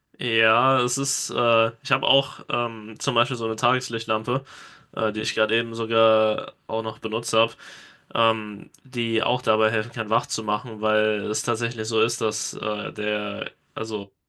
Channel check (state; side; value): identical; both; correlation 1.00